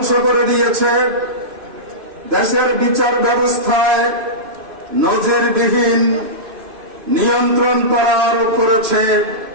করে দিয়েছে, দেশের বিচার ব্যবস্থায় নজিরবিহীন নিয়ন্ত্রণ করা আরোপ করেছে।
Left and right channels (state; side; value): late; left; 2.5 ms